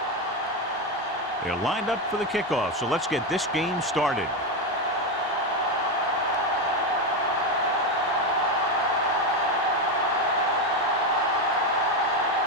They're lined up for the kickoff, so let's get this game started.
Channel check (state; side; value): normal; both; correlation 0.11